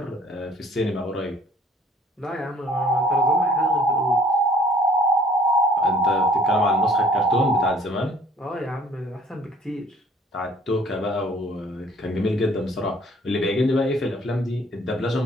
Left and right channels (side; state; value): both; normal; correlation 0.56